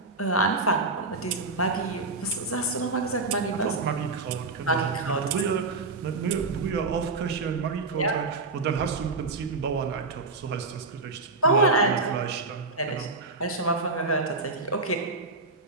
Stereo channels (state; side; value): quieter; left; 3.5 dB